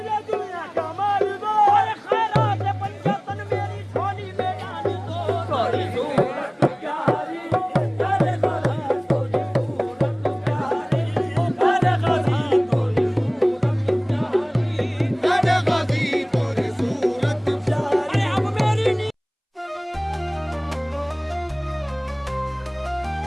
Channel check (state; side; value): identical; both; correlation 1.00